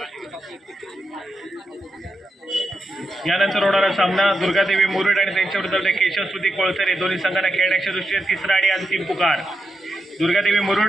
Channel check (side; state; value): both; normal; correlation 0.86